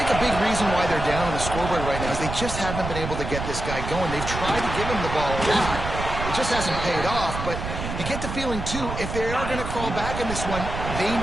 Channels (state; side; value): noise; right; rumble, 6 dB below the sound